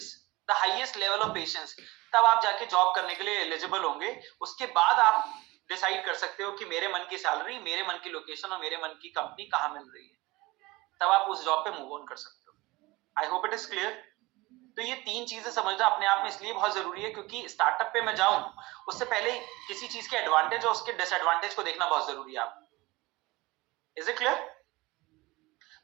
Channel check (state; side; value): quieter; left; 21.6 dB